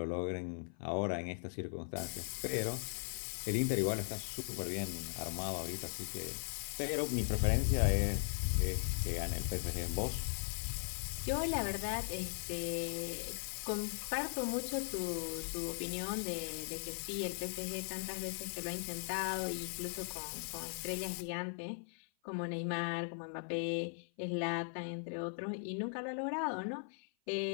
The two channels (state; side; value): silent; right; 52 dB below the other